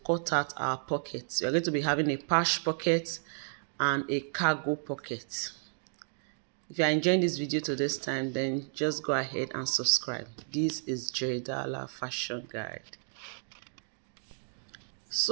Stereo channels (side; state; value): left; silent; digital silence